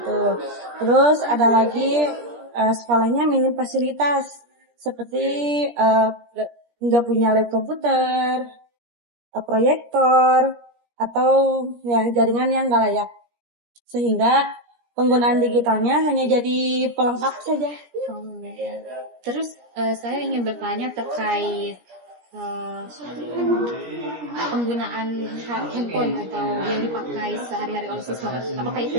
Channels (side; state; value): left; late; 17 ms